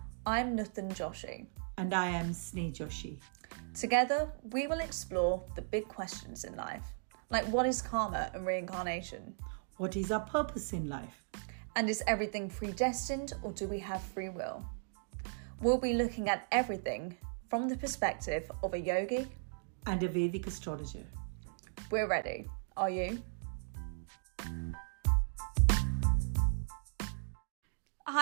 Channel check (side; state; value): left; silent; digital silence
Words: I'm Nutan Joshi. And I am Sneh Joshi. Together, we will explore the big questions in life, like what is karma and reincarnation? What is our purpose in life? And is everything predestined or do we have free will? We'll be looking at everything from the perspective of a yogi and a Vedic astrologer. We're ready. Are you?